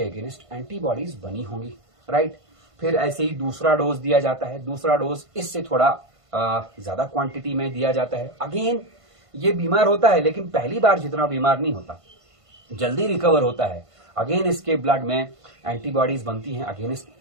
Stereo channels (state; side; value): late; left; 1.5 ms